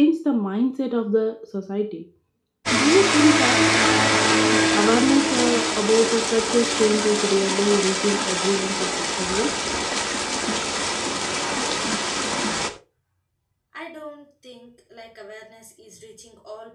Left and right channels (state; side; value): identical; both; correlation 1.00